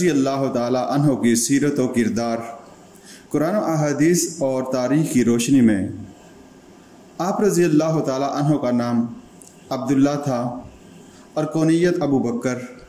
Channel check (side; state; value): both; identical; correlation 1.00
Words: اللہ تعالی عنہ کی سیرت و کردار۔ قرآن و احادیث اور تاریخ کی روشنی میں آپ رضی اللہ تعالی عنہ کا نام عبداللہ تھا اور کونیت ابوبکر۔